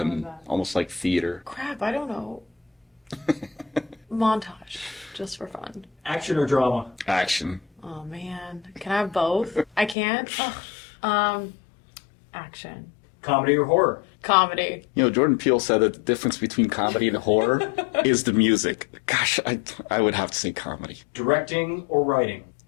like theater. Crap, I don't know. Montage. Just for fun. Action or drama? Action. Oh man. Can I have both? I can't? Action. Comedy or horror? Comedy. Jordan Peele said that the difference between comedy and horror is the music. Gosh, I would have to say comedy. Directing or writing?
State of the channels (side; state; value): right; drops out; at 10.0 s